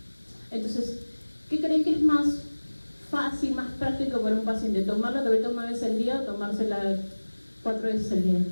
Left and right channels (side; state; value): both; inverted; correlation -1.00